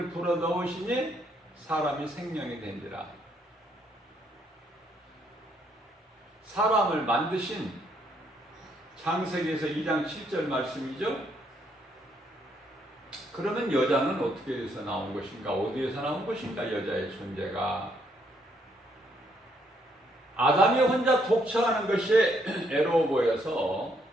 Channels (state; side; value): normal; both; correlation 0.72